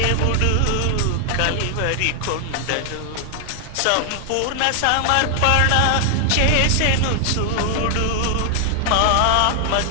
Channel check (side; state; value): both; different; correlation 0.00